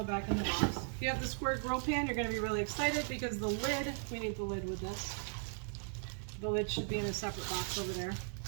back in the box. If you have the square grill pan, you're going to be really excited because the lid. We need the lid with this. The lid should be in a separate box over there.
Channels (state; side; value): silent; left; 53 dB below the other